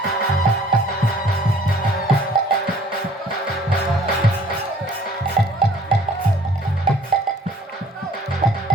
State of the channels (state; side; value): normal; both; correlation 0.55